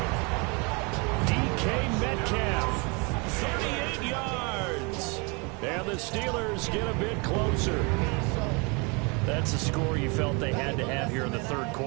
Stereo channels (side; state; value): left; quieter; 30.7 dB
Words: DK Metcalf, 38 yards. And the Steelers get a bit closer. That's a score you felt they had to have here in the third